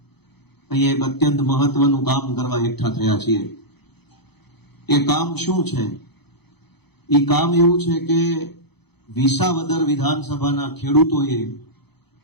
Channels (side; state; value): right; late; 0.98 ms